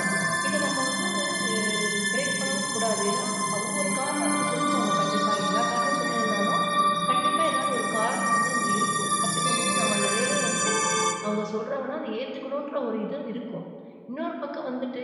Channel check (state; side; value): identical; both; correlation 1.00